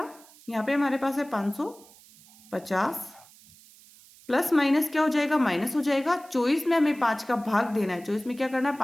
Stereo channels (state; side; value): noise; right; hiss, 24 dB below the sound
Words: यहाँ पे हमारे पास है 550 प्लस माइनस क्या हो जाएगा, माइनस हो जाएगा। 24 में हमें 5 का भाग देना है, 24 में क्या करना है,